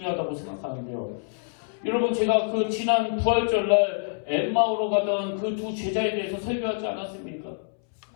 생각하는데요. 여러분 제가 그 지난 부활절날 엠마오로 가던 그 두 제자에 대해서 설교하지 않았습니까?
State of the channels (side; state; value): right; silent; 60 dB below the other